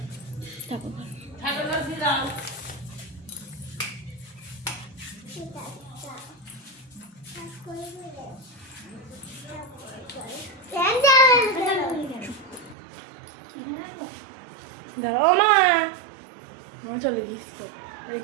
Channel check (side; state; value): left; drops out; at 12.8 s